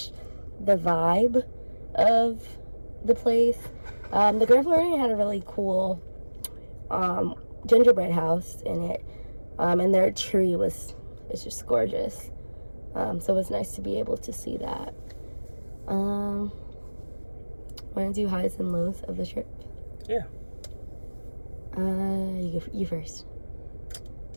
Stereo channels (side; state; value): both; inverted; correlation -1.00